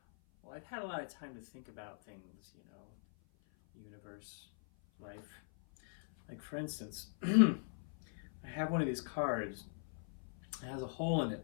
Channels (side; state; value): right; silent; 51 dB below the other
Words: well, I've had a lot of time to think about things, universe, life. Like for instance, I have one of these cards. It has a hole in